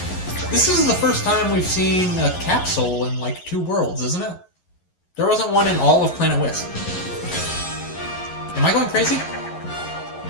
This is the first time we've seen a capsule in like 2 worlds, isn't it? There wasn't one in all of Planet Wisp. Am I going crazy?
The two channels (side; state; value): right; late; 11 ms